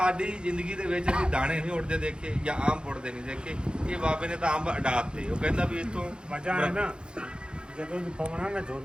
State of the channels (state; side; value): late; left; 0.051 ms